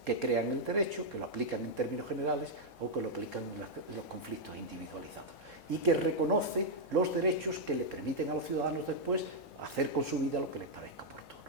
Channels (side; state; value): left; noise; hum, 28 dB below the sound